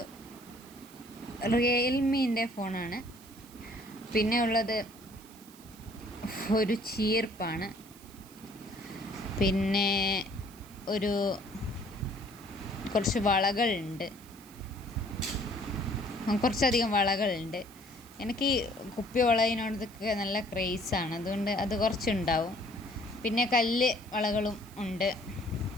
റിയൽമീൻ്റെ ഫോണാണ്. പിന്നെ ഉള്ളത് ഒരു ചീർപ്പാണ്. പിന്നെ കുറച്ച് വളകളുണ്ട്, കുറച്ചധികം വളകളുണ്ട്. എനിക്ക് ഈ കുപ്പി വളയിനോടൊക്കെ നല്ല ക്രേസാണ്, അതുകൊണ്ട് അത് കുറച്ചുണ്ടാവും. പിന്നെ കല്ല് വളകളും ഉണ്ട്.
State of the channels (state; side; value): noise; right; hiss, 22 dB below the sound